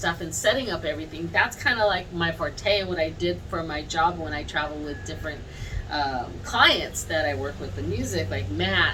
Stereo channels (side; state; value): both; identical; correlation 1.00